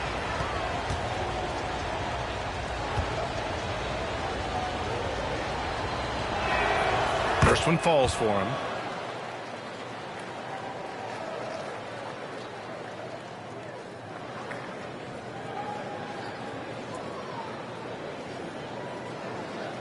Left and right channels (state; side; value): identical; both; correlation 1.00